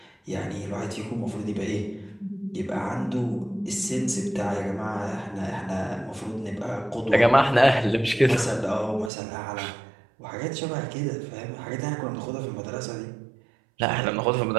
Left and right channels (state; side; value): drops out; left; at 9.1 s